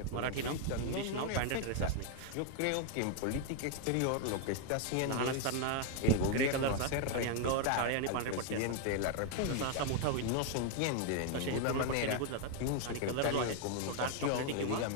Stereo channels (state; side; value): different; both; correlation 0.00